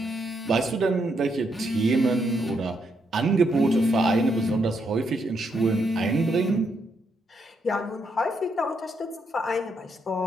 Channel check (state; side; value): normal; both; correlation 0.78